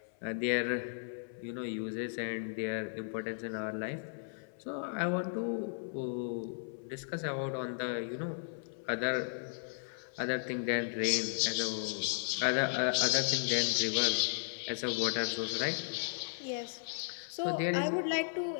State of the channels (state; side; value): silent; right; 54 dB below the other